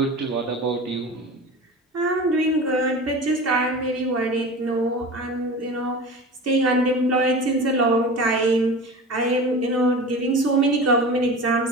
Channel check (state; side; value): normal; both; correlation 0.33